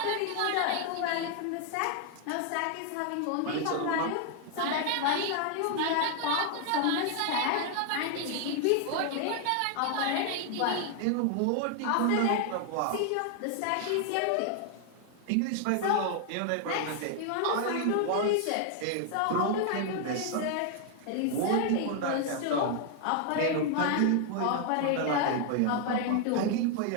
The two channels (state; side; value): different; both; correlation 0.00